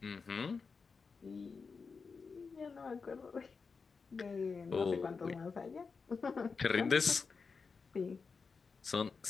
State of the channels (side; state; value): right; quieter; 5.0 dB